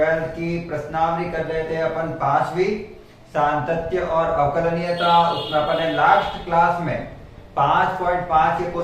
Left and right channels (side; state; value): both; identical; correlation 1.00